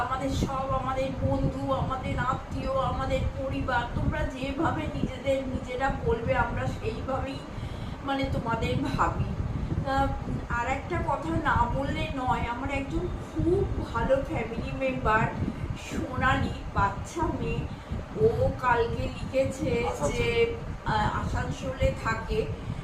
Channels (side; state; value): both; identical; correlation 1.00